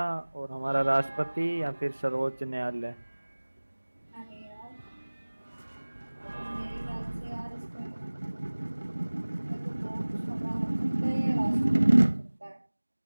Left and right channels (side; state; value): both; inverted; correlation -1.00